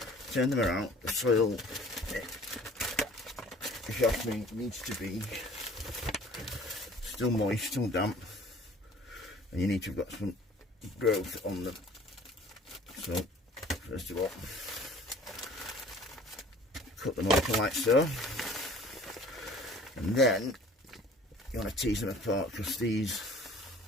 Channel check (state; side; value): normal; both; correlation 0.50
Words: turn them around. The soil, if you ask me, needs to be still moist, still damp. And you need to have got some growth on them. So, first of all, cut them open like so. And then, you want to tease them apart, because these,